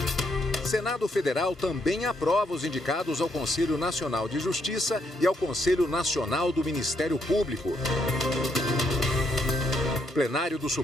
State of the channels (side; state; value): both; normal; correlation 0.76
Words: Senado Federal também aprova os indicados ao Conselho Nacional de Justiça e ao Conselho Nacional do Ministério Público. O plenário do